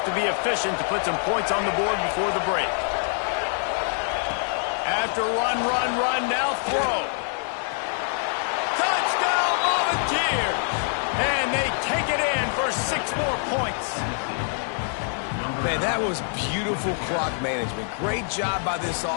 to be efficient to put some points on the board before the break. After run, now throw. Touchdown, Volunteers! And they take it in for 6 more points. Man, that was beautiful clock management. Great job by this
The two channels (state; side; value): silent; right; 58 dB below the other